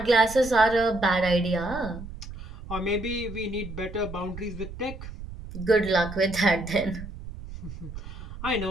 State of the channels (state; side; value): noise; right; rumble, 11 dB below the sound